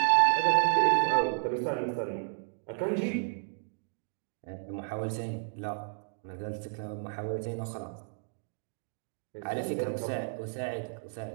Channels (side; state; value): left; silent; digital silence